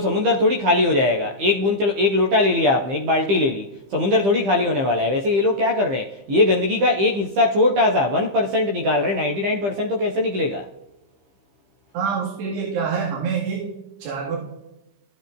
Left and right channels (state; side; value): late; left; 15 ms